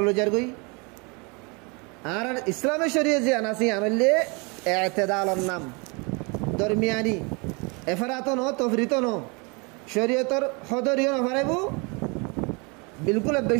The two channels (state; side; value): quieter; left; 30.5 dB